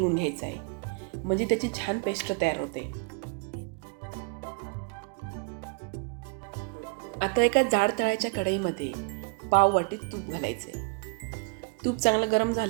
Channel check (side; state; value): left; quieter; 32.0 dB